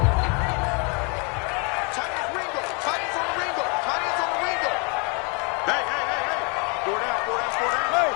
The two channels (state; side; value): quieter; right; 34.4 dB